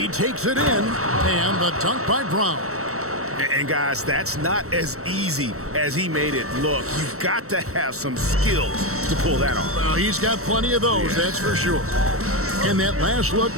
takes it in, and the dunk by Brown. And guys, that's not as easy as he made it look. You've got to have some skills to pull that off. Well, he's got plenty of those, that's for sure. And that last look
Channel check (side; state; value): left; late; 0.64 ms